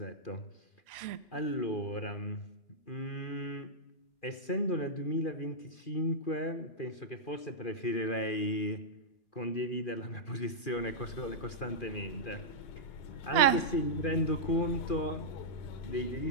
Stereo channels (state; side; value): late; right; 2.4 ms